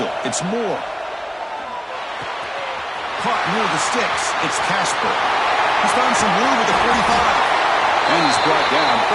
It's Moore. Caught near the sticks. It's Casper. He's found some room with the 45. And he's brought down,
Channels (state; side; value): identical; both; correlation 1.00